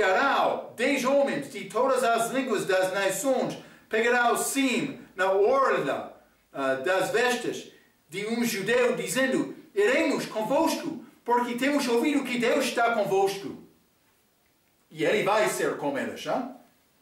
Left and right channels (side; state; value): both; identical; correlation 1.00